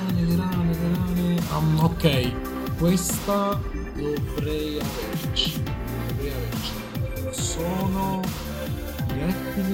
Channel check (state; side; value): identical; both; correlation 1.00